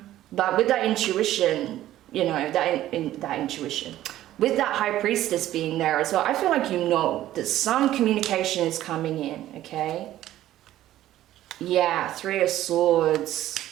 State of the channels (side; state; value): left; quieter; 13.7 dB